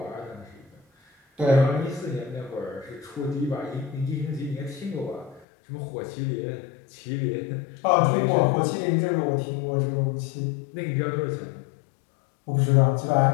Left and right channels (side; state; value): right; drops out; at 5.5 s